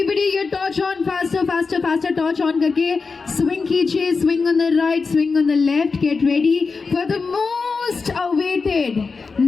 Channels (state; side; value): quieter; right; 4.6 dB